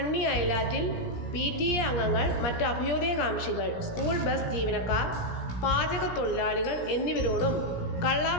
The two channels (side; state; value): right; late; 17 ms